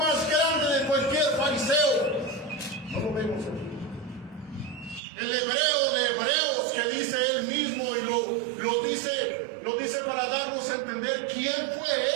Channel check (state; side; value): drops out; left; at 5.0 s